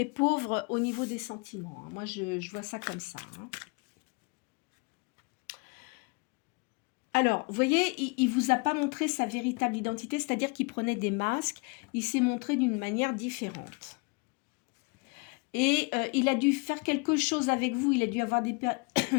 pauvre au niveau des sentiments, hein. Moi, je vois ça comme ça, hein. Alors, vous voyez, il ne vous a pas montré sa véritable identité, c'est-à-dire qu'il prenait des masques, il s'est montré d'une manière différente. Et il a dû faire quelque chose avec vous, il a dû avoir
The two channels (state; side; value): quieter; right; 31.0 dB